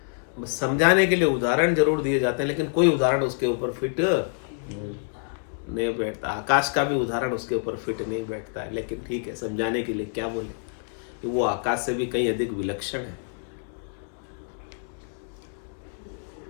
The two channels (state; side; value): silent; right; 60 dB below the other